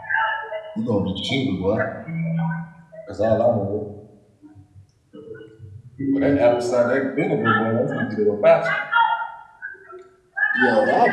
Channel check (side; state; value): both; identical; correlation 1.00